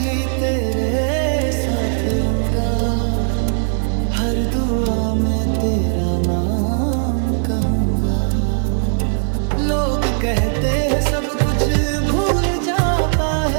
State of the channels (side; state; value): left; silent; 63 dB below the other